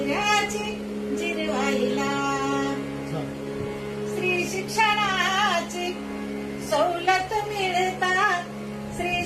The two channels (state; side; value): identical; both; correlation 1.00